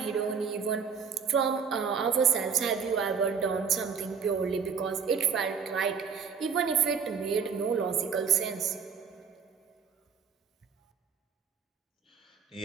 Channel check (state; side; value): quieter; left; 6.3 dB